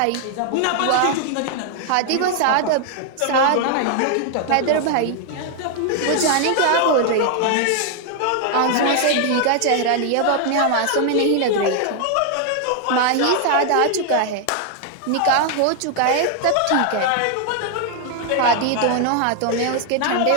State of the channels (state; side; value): different; both; correlation 0.00